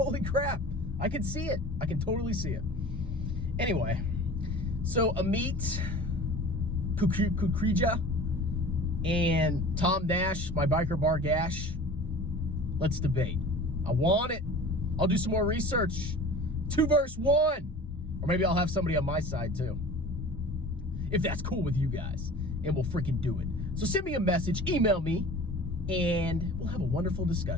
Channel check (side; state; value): both; normal; correlation 0.41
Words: crap. I can see it. I can totally see it. Anyway, so Amit, Kukreja, and Tom Nash, my biker bar gash, let's debate. I want it. I'll do some more research. 2 versus 1. Or maybe I'll have somebody on my side too, if that's cool with you guys, and we'll freaking do it. So send me a message, email me, and we'll have a wonderful